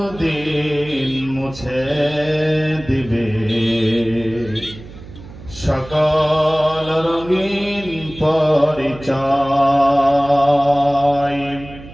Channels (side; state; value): right; noise; hum, 16 dB below the sound